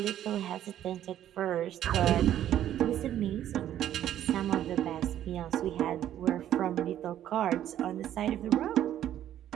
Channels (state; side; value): quieter; left; 11.5 dB